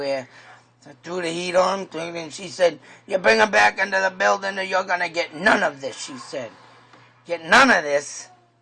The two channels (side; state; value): both; identical; correlation 1.00